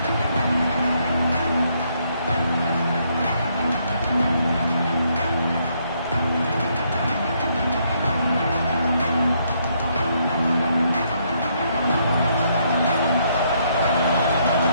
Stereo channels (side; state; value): both; inverted; correlation -0.72